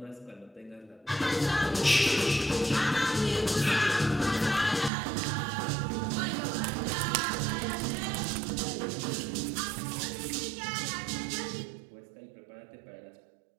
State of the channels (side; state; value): left; drops out; at 4.9 s